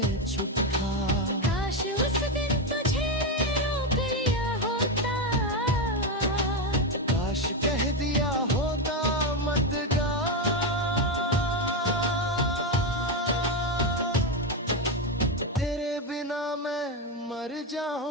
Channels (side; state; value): both; normal; correlation 0.09